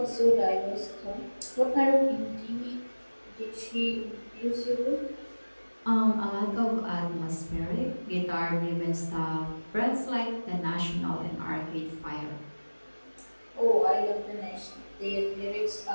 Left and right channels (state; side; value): inverted; both; correlation -1.00